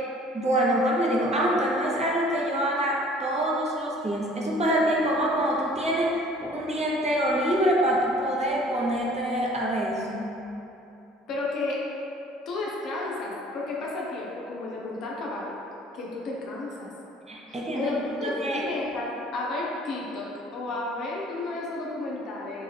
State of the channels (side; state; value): both; normal; correlation 0.53